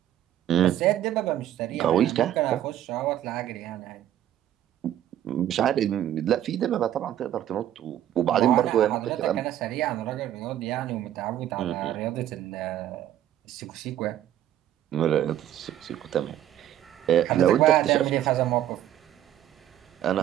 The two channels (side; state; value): left; quieter; 11.9 dB